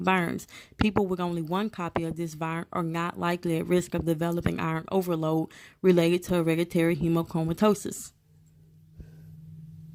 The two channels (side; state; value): both; identical; correlation 1.00